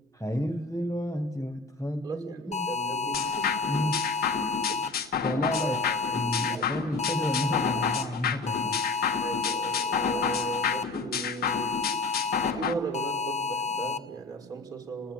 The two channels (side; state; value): right; quieter; 3.5 dB